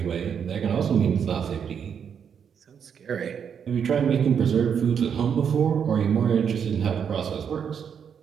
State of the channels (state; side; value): quieter; left; 7.5 dB